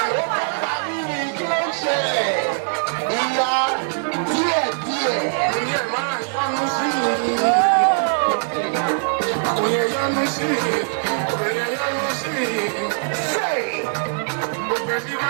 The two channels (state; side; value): silent; left; 65 dB below the other